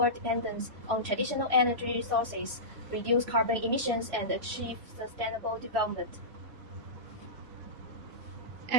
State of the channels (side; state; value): left; late; 3.0 ms